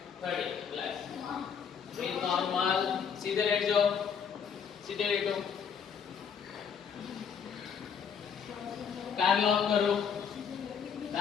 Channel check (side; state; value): right; quieter; 7.0 dB